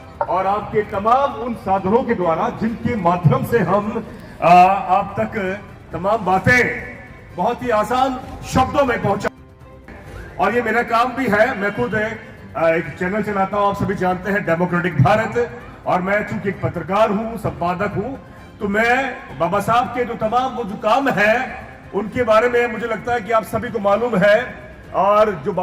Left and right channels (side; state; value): both; identical; correlation 1.00